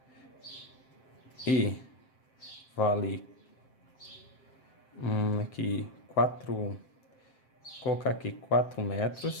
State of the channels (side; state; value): right; late; 7.6 ms